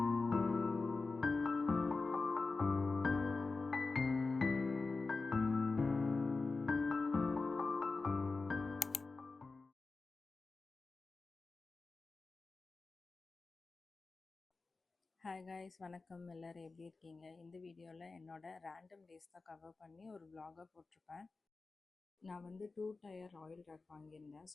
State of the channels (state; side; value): quieter; right; 3.9 dB